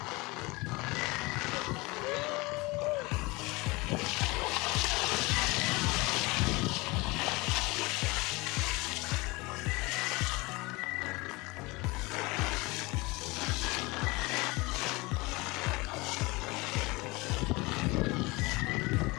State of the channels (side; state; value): right; quieter; 24.1 dB